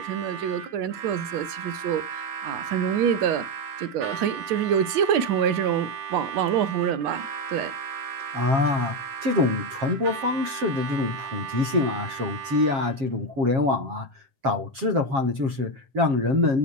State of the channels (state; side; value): late; left; 7.4 ms